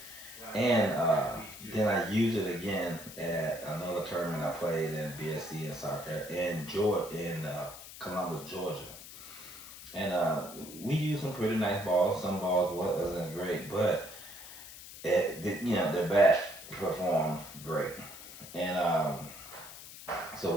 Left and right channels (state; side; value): noise; left; hiss, 14 dB below the sound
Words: And then I used it again at another tournament I played in BSC in South Carolina, in Columbus, Georgia. And we used some pretty nice balls. Some balls wasn't great, but the bat performed great. And